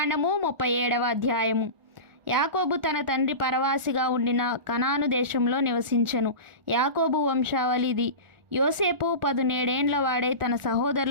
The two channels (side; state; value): left; late; 1.4 ms